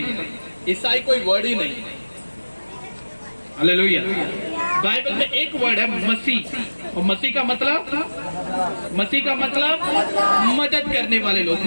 है, ईसाई कोई वर्ड ही नहीं है। हालेलुया। बाइबल में एक वर्ड है मसीह, और मसीह का मतलब मदद करने वाले लोग,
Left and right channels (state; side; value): inverted; both; correlation -1.00